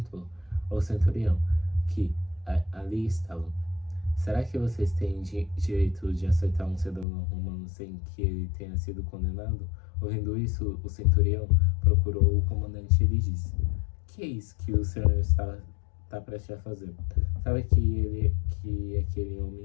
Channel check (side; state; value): right; drops out; at 7.1 s